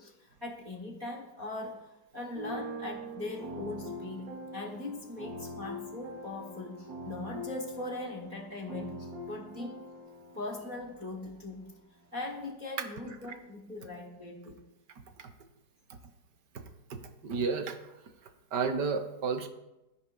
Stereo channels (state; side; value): late; left; 5.2 ms